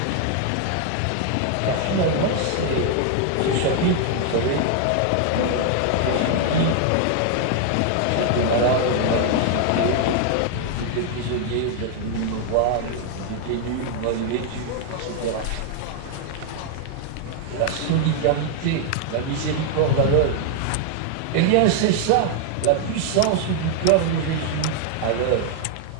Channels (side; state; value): both; different; correlation 0.00